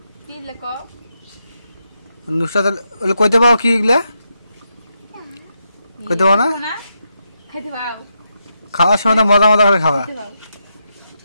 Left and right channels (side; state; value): both; inverted; correlation -0.83